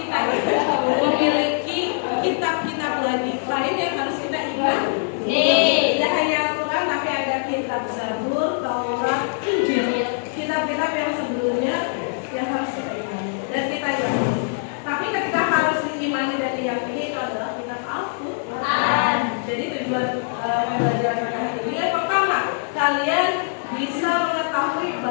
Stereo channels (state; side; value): silent; right; 62 dB below the other